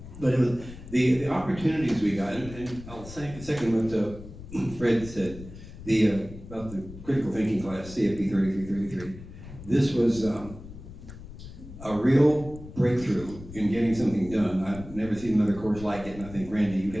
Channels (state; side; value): noise; left; rumble, 14 dB below the sound